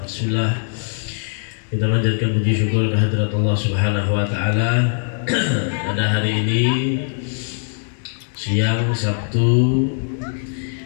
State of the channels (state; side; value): silent; right; digital silence